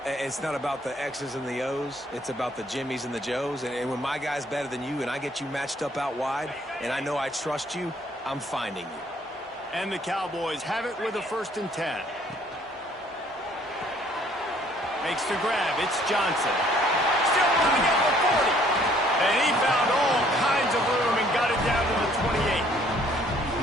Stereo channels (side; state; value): both; normal; correlation 0.61